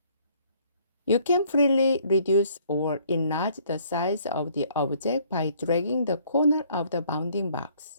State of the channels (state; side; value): inverted; both; correlation -0.62